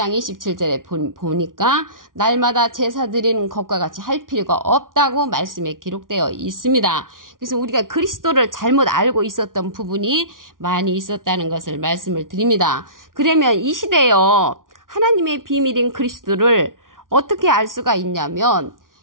27절에 보니까 날마다 제사 드리는 것과 같이 할 필요가 없다고 말씀에 기록되어 있습니다. 그래서 우리가 그리스도를 잘못 알고 있었던 부분이 많이 있었다는 것을 말씀을 드립니다. 그러면 이 시대에요. 하나님의 비밀인 그리스도를 어떻게 알 수가 있냐면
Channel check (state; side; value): late; left; 0.89 ms